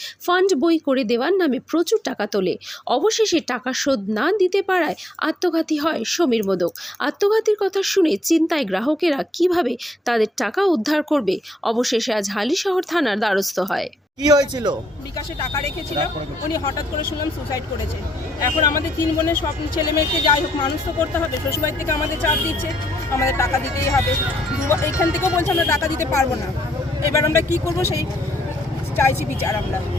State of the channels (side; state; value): both; normal; correlation 0.75